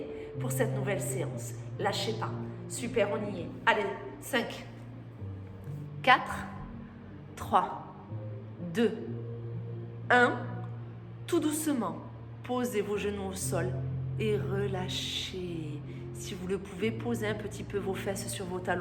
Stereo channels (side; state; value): both; identical; correlation 1.00